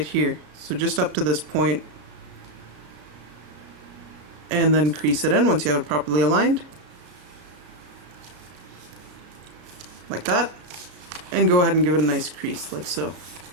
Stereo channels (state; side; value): late; left; 34 ms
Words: here. So just up to this point. And then crease it in once you have it properly aligned. Like that. And go ahead and give it a nice crease, like so.